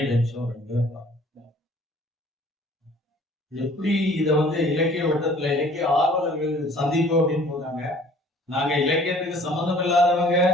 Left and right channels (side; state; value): both; normal; correlation 0.53